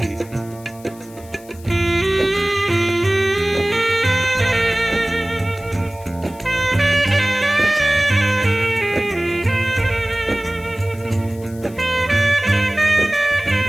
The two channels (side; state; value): left; noise; hiss, 23 dB below the sound